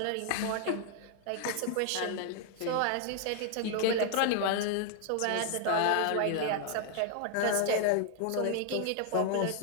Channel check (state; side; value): different; both; correlation 0.00